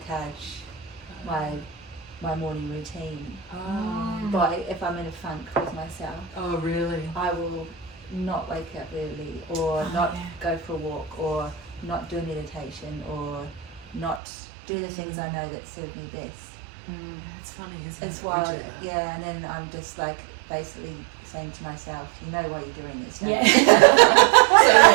my morning routine. But if I'm in a funk with myself, Oh, really? I will not wake up early, or not go for a walk, or not do meditation, or not do the things I know that serve me best. It's funny, isn't it? It's We wild, do that. yeah. And then I'm just like basically saying to myself, you know why you're doing this, don't Yeah. you? So,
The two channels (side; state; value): left; drops out; at 14.2 s